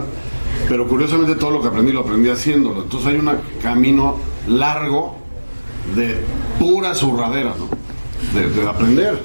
pero curiosamente todo lo que aprendí lo aprendí haciéndolo. Entonces hay un camino largo de pura zurradera, ¿no? De aprender,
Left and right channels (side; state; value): both; inverted; correlation -1.00